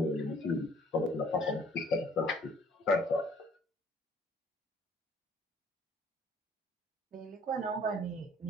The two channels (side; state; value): both; normal; correlation 0.57